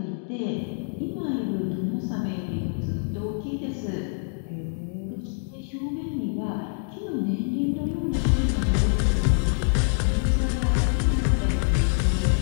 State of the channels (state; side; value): silent; right; digital silence